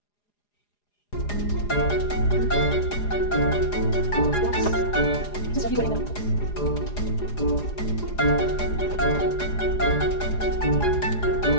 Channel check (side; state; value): right; late; 4.9 ms